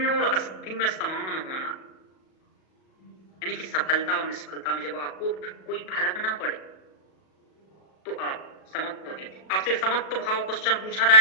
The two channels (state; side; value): late; right; 37 ms